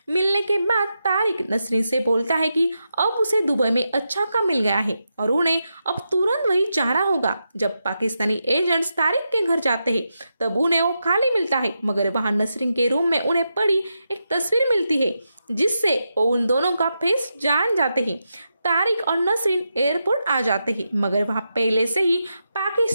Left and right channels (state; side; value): inverted; both; correlation -0.87